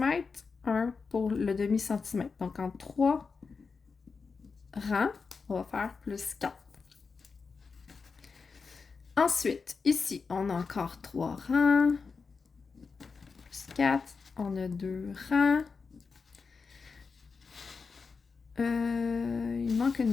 1 pour le demi-centimètre. Donc, en 3 rangs, on va faire plus 4. Ensuite, ici, on a encore 3 rangs. Plus 4. On a 2 rangs. Il manque une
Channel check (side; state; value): right; quieter; 4.9 dB